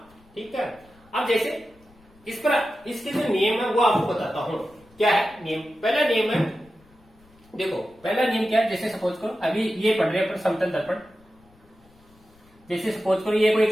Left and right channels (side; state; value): left; noise; rumble, 29 dB below the sound